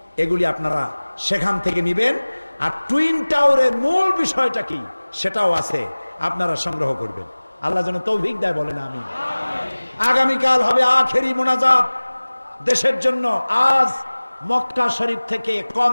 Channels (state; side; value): inverted; both; correlation -1.00